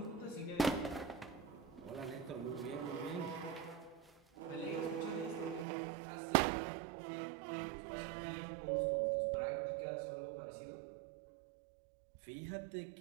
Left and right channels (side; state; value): left; drops out; at 5.7 s